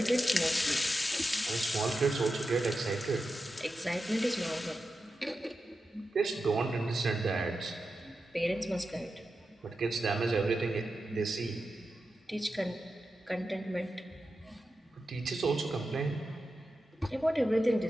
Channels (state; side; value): normal; both; correlation 0.90